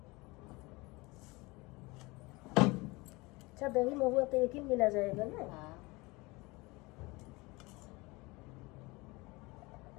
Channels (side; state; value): right; quieter; 24.1 dB